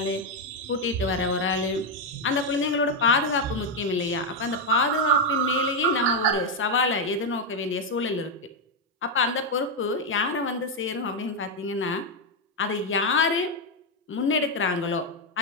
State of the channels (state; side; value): normal; both; correlation 0.03